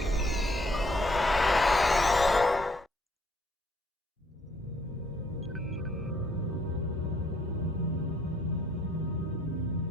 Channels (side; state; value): both; normal; correlation 0.65